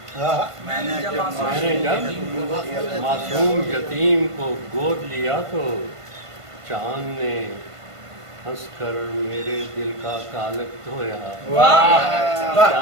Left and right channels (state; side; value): late; left; 1.5 ms